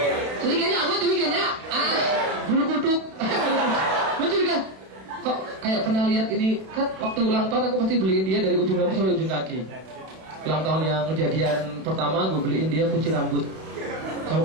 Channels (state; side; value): late; left; 32 ms